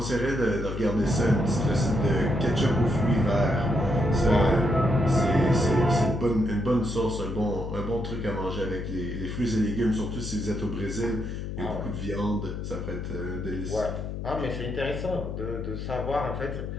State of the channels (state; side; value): noise; left; hum, 6 dB below the sound